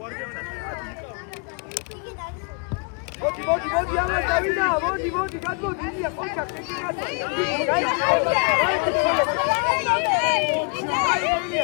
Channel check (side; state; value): right; quieter; 36.3 dB